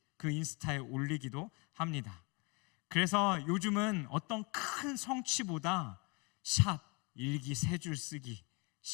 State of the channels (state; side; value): quieter; right; 30.2 dB